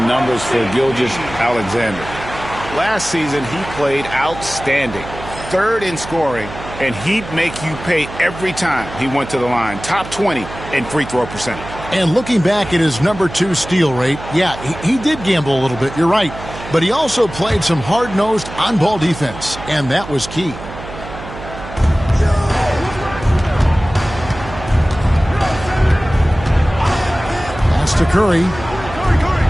numbers for Gilgeous-Alexander. Last season, he played outstanding. 3rd in scoring, and he'd make you pay every time he went to the line. Top 20 in free throw percentage. And looking back at his number 2 steal rate, yeah, he did gamble a little bit, you're right. But he also played some hard-nosed on-ball defense, and that was key. To Curry.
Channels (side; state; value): right; noise; hum, 13 dB below the sound